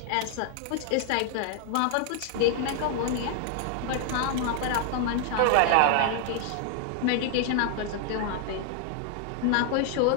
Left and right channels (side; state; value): both; different; correlation 0.00